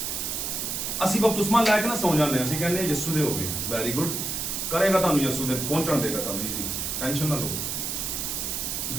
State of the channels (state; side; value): noise; right; hiss, 2 dB below the sound